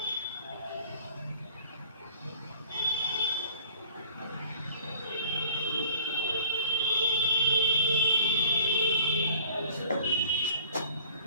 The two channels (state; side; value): inverted; both; correlation -0.49